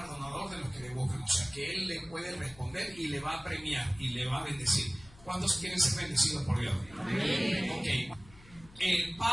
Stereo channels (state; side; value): noise; left; hum, 23 dB below the sound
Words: de los que le buscan, o sea que Él le puede responder y le va a premiar y le va a bendecir. ¿Cuántos quieren ser bendecidos por Dios? Amén. Ok.